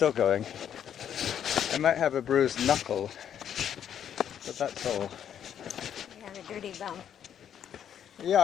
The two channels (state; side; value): quieter; right; 9.3 dB